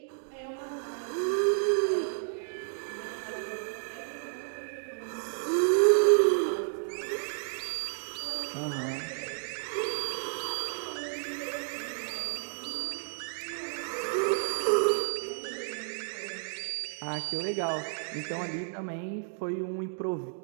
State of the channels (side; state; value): left; silent; digital silence